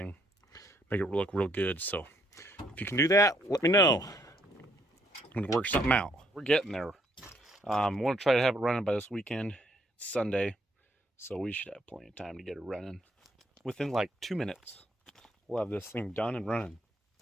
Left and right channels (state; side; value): normal; both; correlation 0.70